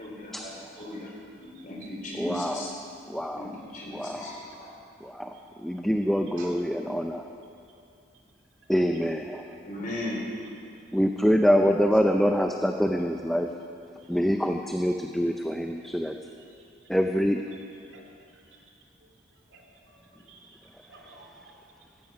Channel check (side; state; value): both; normal; correlation 0.92